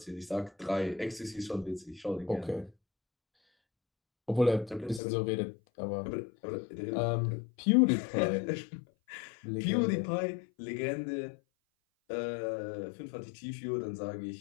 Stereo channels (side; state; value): right; drops out; at 5.0 s